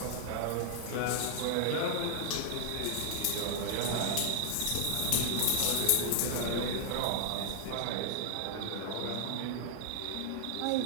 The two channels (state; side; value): different; both; correlation 0.00